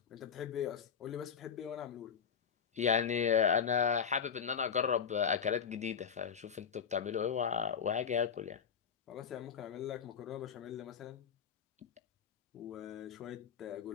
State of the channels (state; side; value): quieter; right; 7.1 dB